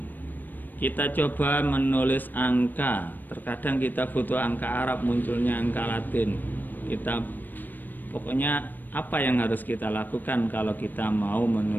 Kita coba menulis angka. Terkadang kita butuh angka Arab, munculnya angka Latin. Pokoknya apa yang harus kita lakukan kalau kita mau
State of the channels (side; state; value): right; late; 0.090 ms